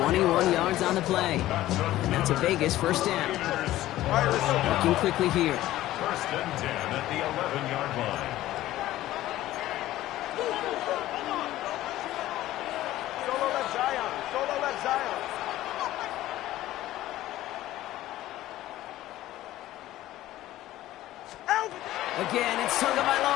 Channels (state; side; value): quieter; right; 15.0 dB